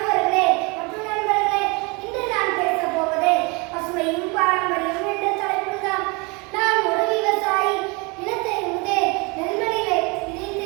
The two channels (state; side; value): quieter; left; 28.9 dB